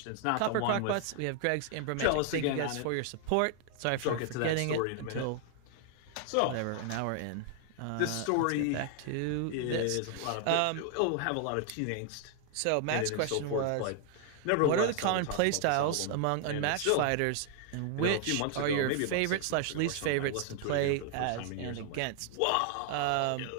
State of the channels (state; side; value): different; both; correlation 0.00